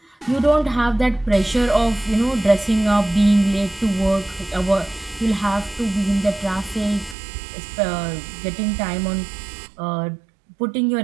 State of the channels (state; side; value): drops out; left; at 7.2 s